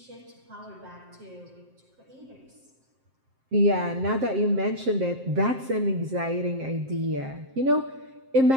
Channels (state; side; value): late; left; 7.6 ms